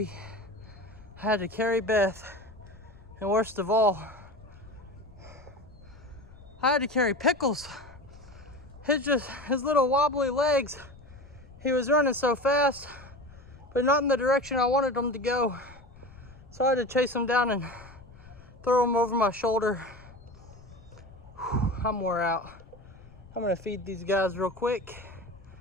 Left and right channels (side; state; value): left; noise; rumble, 21 dB below the sound